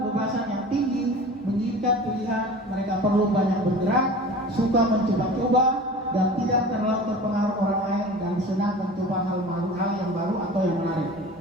yang tinggi menginginkan pilihan, mereka perlu banyak bergerak, suka mencoba-coba, dan tidak terlalu terpengaruh orang lain dan senang mencoba hal yang baru atau yang menarik.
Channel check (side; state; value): both; normal; correlation 0.38